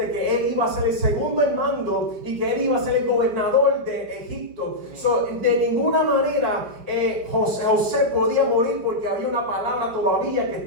que él iba a ser el segundo en mando y que él iba a ser el gobernador de Egipto. De ninguna manera José podía morir, porque había una palabra todavía que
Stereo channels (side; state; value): left; late; 5.5 ms